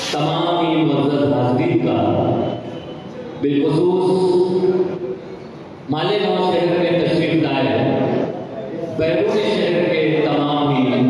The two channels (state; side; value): identical; both; correlation 1.00